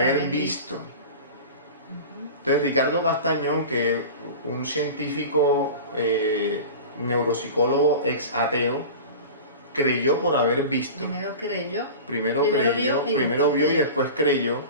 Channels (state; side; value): inverted; both; correlation -0.34